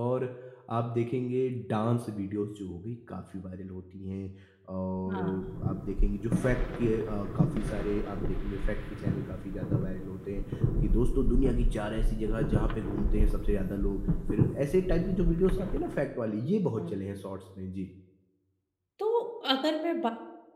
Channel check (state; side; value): identical; both; correlation 1.00